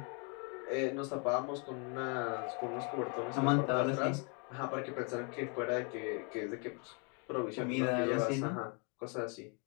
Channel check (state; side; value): quieter; right; 36.1 dB